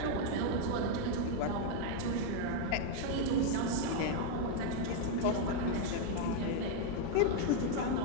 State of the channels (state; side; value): different; both; correlation 0.00